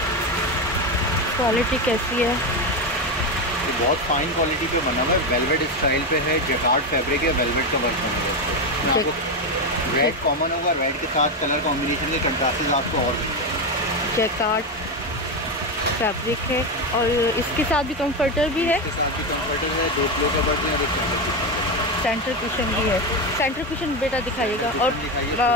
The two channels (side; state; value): both; normal; correlation 0.12